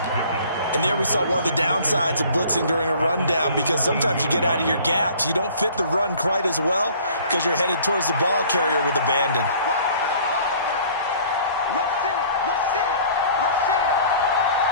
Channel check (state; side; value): inverted; both; correlation -0.51